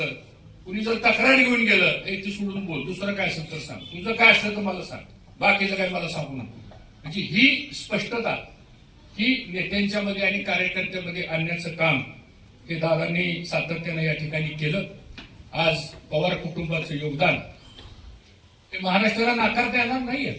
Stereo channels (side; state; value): both; identical; correlation 1.00